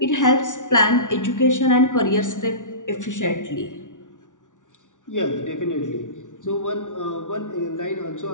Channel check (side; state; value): right; late; 0.87 ms